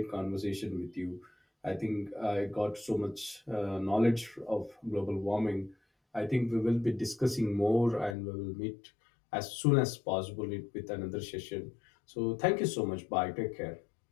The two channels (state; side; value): drops out; right; at 8.2 s